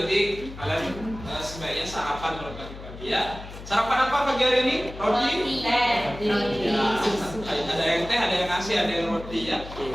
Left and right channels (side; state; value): left; noise; hum, 13 dB below the sound